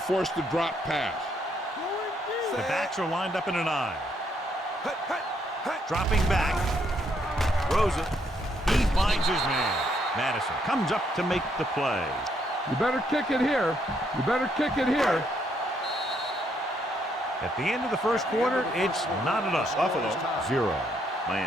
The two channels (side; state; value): both; normal; correlation 0.73